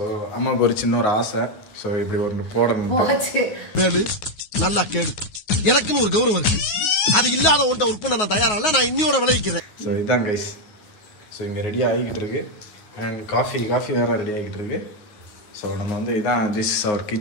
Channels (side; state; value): right; late; 9.4 ms